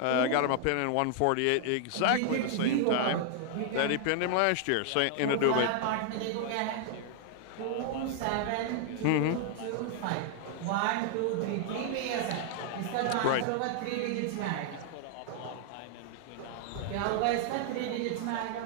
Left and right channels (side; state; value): both; different; correlation 0.00